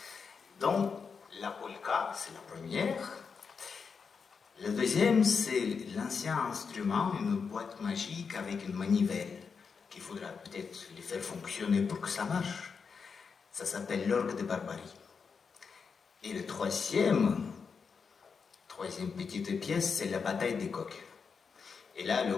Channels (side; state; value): right; quieter; 5.6 dB